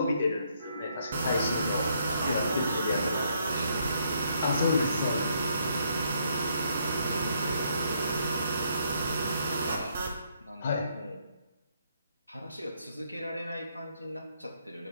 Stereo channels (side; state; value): both; inverted; correlation -0.72